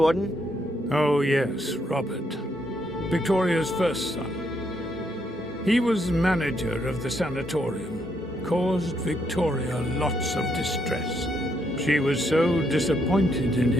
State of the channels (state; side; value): normal; both; correlation 0.75